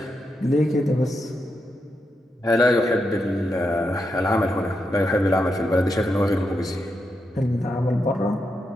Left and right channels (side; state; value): both; normal; correlation 0.85